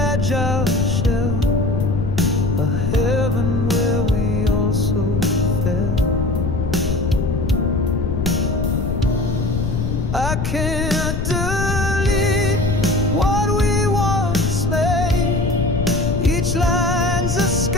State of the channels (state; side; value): noise; left; rumble, 1 dB below the sound